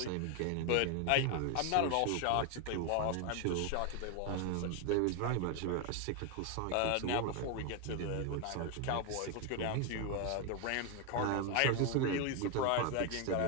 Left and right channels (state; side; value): different; both; correlation 0.01